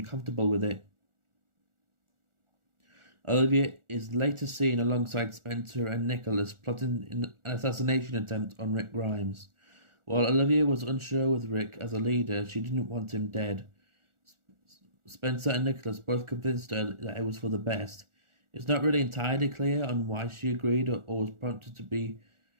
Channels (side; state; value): left; late; 1.4 ms